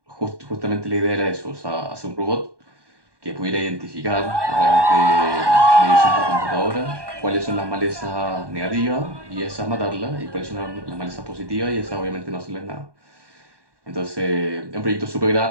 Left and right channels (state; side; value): late; left; 1.2 ms